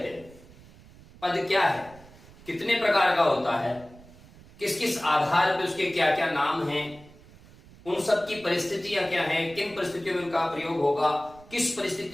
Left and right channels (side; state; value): right; noise; rumble, 22 dB below the sound